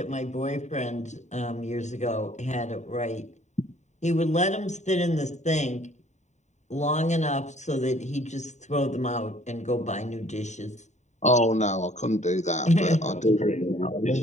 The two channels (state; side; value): late; right; 0.34 ms